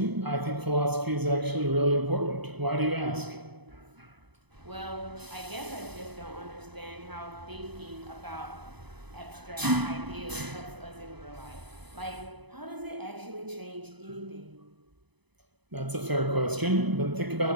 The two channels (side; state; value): left; late; 0.99 ms